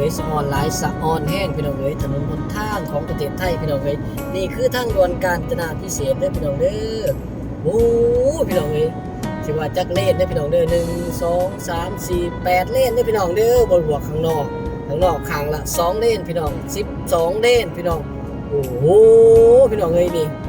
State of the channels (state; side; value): identical; both; correlation 1.00